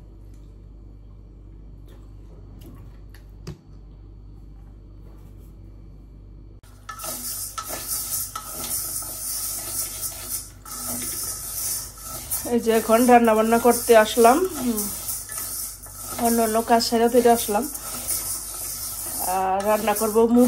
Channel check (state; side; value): identical; both; correlation 1.00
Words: এই যে এখন রান্না বান্না করতে আসলাম, অন্য অন্য কাজ সেরে ফিরে আসলাম। আর রান্না করব